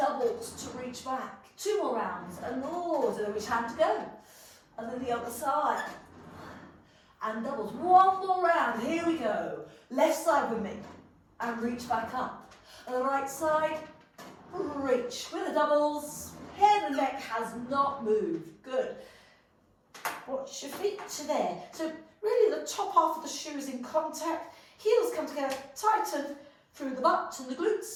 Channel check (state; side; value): identical; both; correlation 1.00